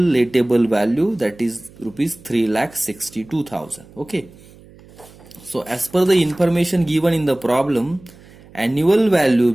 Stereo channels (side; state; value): right; noise; hum, 24 dB below the sound